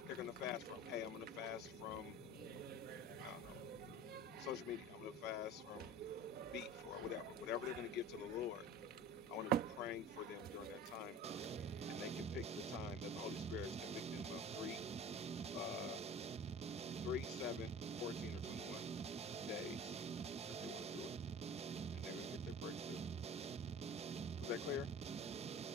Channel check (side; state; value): both; normal; correlation 0.39